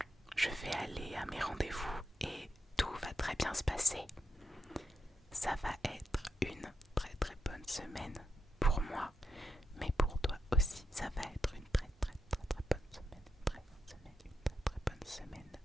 Je vais aller à mes rendez-vous et tout va très bien se passer. Ça va être une très bonne semaine pour moi, mais pour toi aussi, ça va être une très bonne semaine. Très bonne semaine.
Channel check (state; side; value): normal; both; correlation 0.84